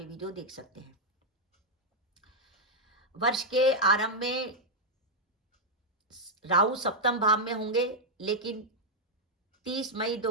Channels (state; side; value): normal; both; correlation -0.04